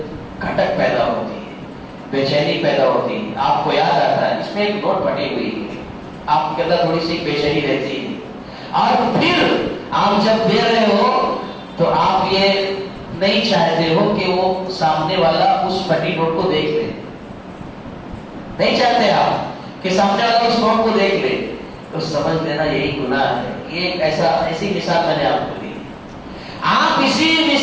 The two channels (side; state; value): both; identical; correlation 1.00